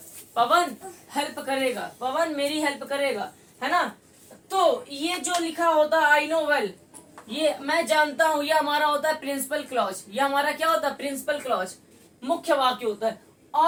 पवन हेल्प करेगा, पवन मेरी हेल्प करेगा, है ना। तो ये जो लिखा होता है आई नो वेल, ये मैं जानता हूं, ये हमारा होता है प्रिंसिपल क्लॉज। ये हमारा क्या होता है, प्रिंसिपल क्लॉज, मुख्य वाक्य होता है।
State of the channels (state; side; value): identical; both; correlation 1.00